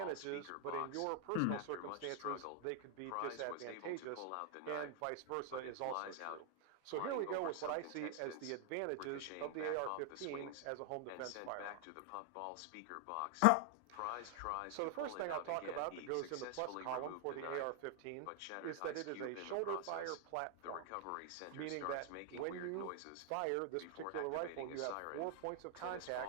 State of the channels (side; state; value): both; different; correlation 0.00